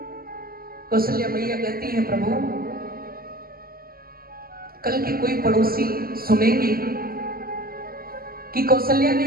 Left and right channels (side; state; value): left; late; 0.43 ms